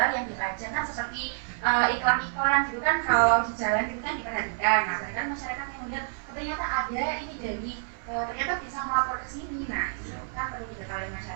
yang dipajang kan seperti iklan-iklan gitu kan, kalau di jalan gitu kan diperhatikan. Nah, kan masyarakat yang melihat ternyata ada ini dari ternyata bisa melapor ke sini. Nah, itu kan perlu diketahui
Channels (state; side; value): silent; left; digital silence